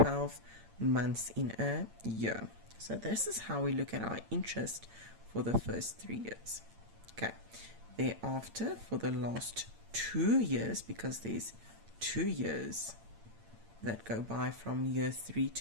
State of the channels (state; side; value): late; left; 8.8 ms